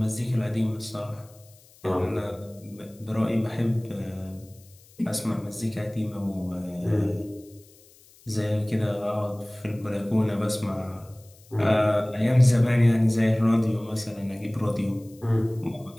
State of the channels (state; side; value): noise; left; hiss, 27 dB below the sound